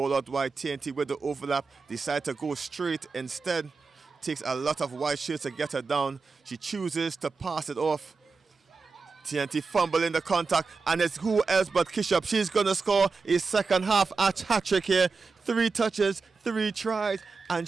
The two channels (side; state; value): left; quieter; 4.5 dB